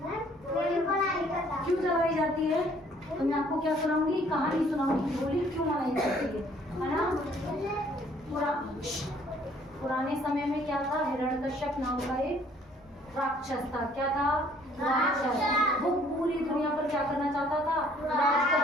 क्यों जलाई जाती है? तो मैं आपको क्या सुनाऊंगी, कहानी सुनाऊंगी होली क्यों मनाई जाती है ना। पुराने समय में क्या था, हिरण्यकश्यप नाम का एक राक्षस था। क्या था? राक्षस। वो पूरी दुनिया पर क्या करना चाहता था? राज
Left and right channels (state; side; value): normal; both; correlation 0.60